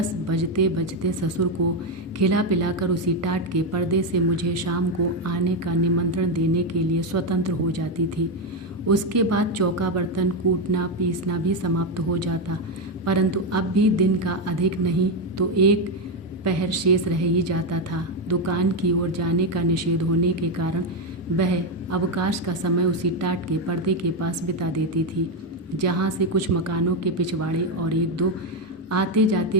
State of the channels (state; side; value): normal; both; correlation 0.07